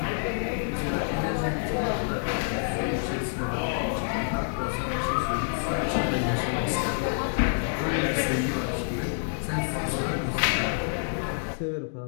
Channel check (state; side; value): silent; right; digital silence